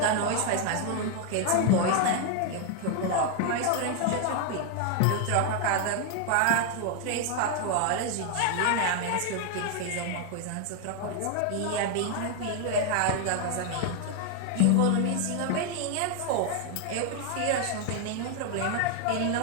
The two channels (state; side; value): different; both; correlation 0.00